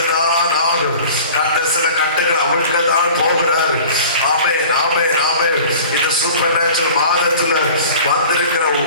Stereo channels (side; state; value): both; inverted; correlation -0.43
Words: ஆகும். கர்த்தர் சில கட்டுகள் அவிழ்க்கதான் போகிறாரு. ஆமென், ஆமென், ஆமென். இந்த சூப்பர் நேச்சுரல் மாதத்துல வந்திருக்கிற